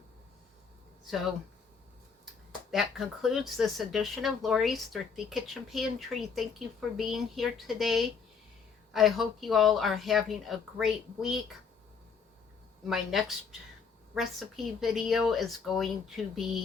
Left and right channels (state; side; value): quieter; right; 5.8 dB